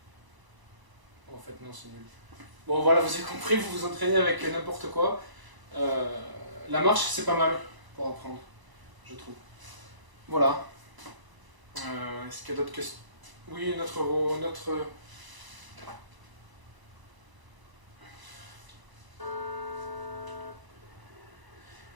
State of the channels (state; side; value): late; left; 1.0 ms